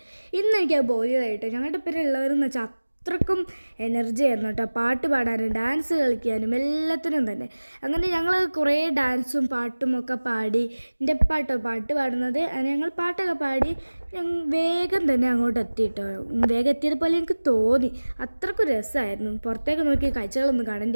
ഇന്ന് എനിക്കത് ബോധ്യമായിട്ടോ. ഞങ്ങളുടെ പേര് ഉള്ളവരെന്ന് വെച്ചാൽ അത്രക്കും എനർജി ആയിരുന്നു കേട്ടോ. പാട്ട് പാടാനും ഡാൻസ് കളിക്കാനും എല്ലാത്തിനും തന്നെ. അങ്ങനെ ഞങ്ങൾ കുറേ ഡാൻസും പാട്ടും ഒക്കെ പാടി. എൻ്റെ പാട്ടോ പാട്ട് പാടുന്നത്. ഞങ്ങൾ പാട്ടൊക്കെ പാടി വേഗം തന്നെ അങ്ങോട്ട് എത്തി കേട്ടോ. വേഗം എത്തിയതുപോലെ എനിക്ക് തോന്നി. അത്രക്കും രസമായിരുന്നു. പുറത്തേക്ക് നോക്കി കാഴ്ചകളൊന്നും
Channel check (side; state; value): both; inverted; correlation -1.00